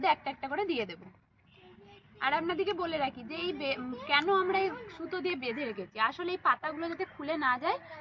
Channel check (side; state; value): both; identical; correlation 1.00